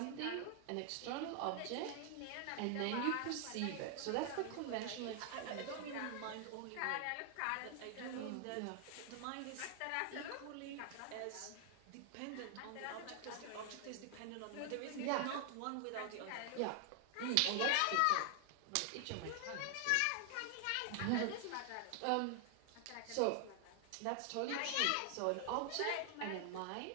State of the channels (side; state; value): both; different; correlation 0.00